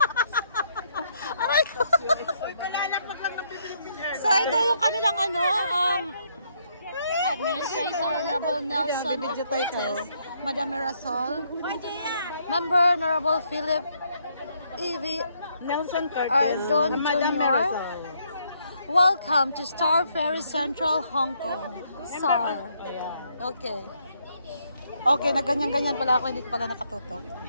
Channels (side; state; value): both; inverted; correlation -0.73